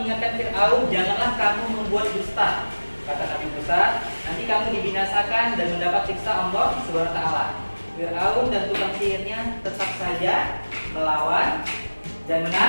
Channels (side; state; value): both; inverted; correlation -1.00